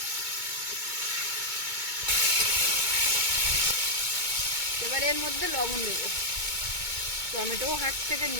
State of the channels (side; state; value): left; late; 2.2 ms